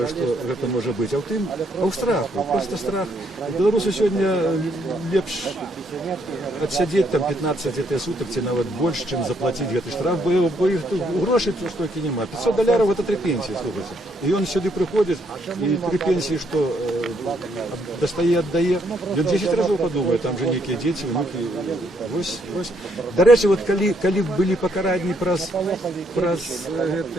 што гэта можа быць, а ў тым, а ў страху, просто страх. Беларусу сёння лепш адсядзець там 15 сутак ці нават больш, чым заплаціць гэты штраф, бо іх тут грошай тут столькі няма. $500 гэта 3 пенсіі, слухайце. І ён сюды прыходзіць, і 3 пенсіі, што дастае, аддае, ён 10 разоў падумае, там жа нейкія дзеці, внукі. Вось. Дарэчы, вот калі былі пакаранні праз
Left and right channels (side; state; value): both; normal; correlation 0.72